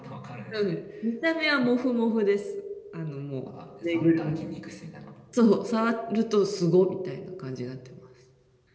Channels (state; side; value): identical; both; correlation 1.00